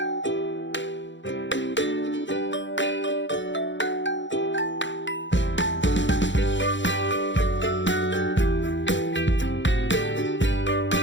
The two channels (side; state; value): right; late; 0.54 ms